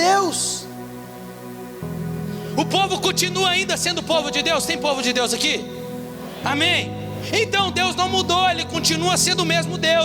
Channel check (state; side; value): identical; both; correlation 1.00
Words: O povo continua ainda sendo povo de Deus. Tem povo de Deus aqui? Amém. Então Deus não mudou, Ele continua sendo o mesmo